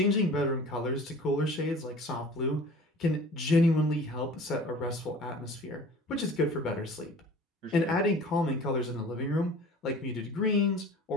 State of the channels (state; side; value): normal; both; correlation 0.44